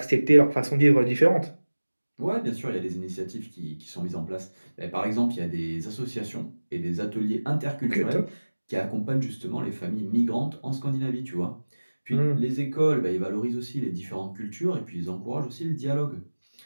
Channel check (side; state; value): both; inverted; correlation -1.00